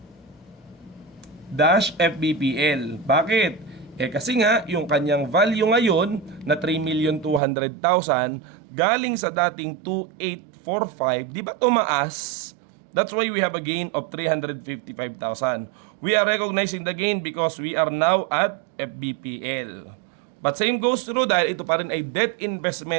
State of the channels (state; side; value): drops out; left; at 7.4 s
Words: dash FVPL. Bakit? Kasi nga yung kanyang value ngayon na 3,200,000 galing sa dating 2,845, di ba tumaas? That's why we have a gain of 355,000. We are recognizing the gain because we are now at FVPL. But same goes through dahil ito pa rin ay debt